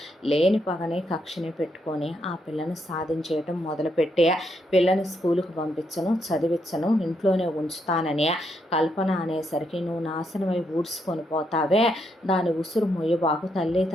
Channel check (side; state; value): both; normal; correlation 0.78